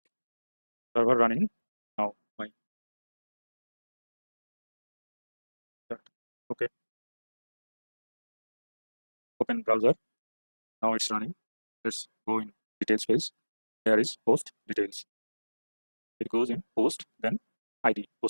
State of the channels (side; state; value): both; inverted; correlation -1.00